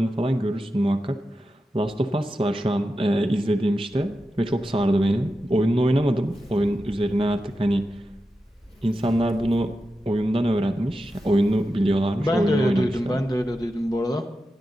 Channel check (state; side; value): normal; both; correlation 0.90